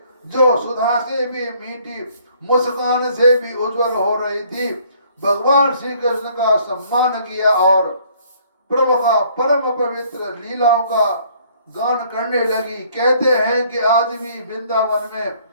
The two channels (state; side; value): inverted; both; correlation -0.61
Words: जो सुधा से भी मीठी, मुस्कान से भी उज्जवल हो रही थी, भगवान श्री कृष्ण का सम्मान किया और प्रभु का परम पवित्र लीलाओं का गान करने लगी। कहते हैं कि आज भी वृंदावन में